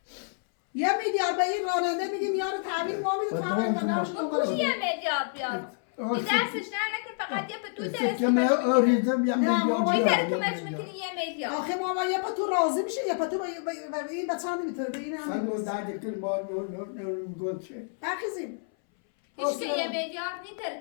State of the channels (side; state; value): right; silent; 59 dB below the other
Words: 1 میلیارد به این راننده میگیم یارو تعمیر ما میده تعمیر و نمش دنبالش 1 میلیارد بیاد این دستش نه نکن فقط یه پتوی درست که من آریزم یه نه، ما میلیارد این بیارم. طرف میکنی 1 میلیارد آخه ما یه پتو راضی میشه یه پتو به این بچه هم نمیتونه به این سن هم و درد کل ما نور گل چه بخیزیم هیچ که 1 میلیارد نی